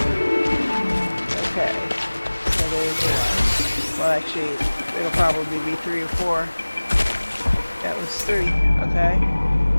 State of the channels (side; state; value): both; inverted; correlation -1.00